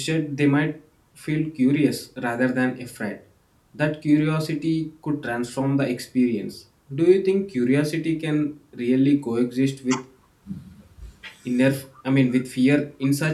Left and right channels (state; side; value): identical; both; correlation 1.00